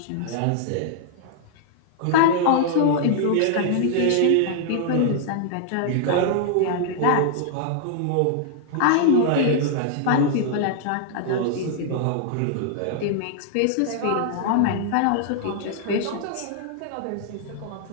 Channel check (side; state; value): both; different; correlation -0.01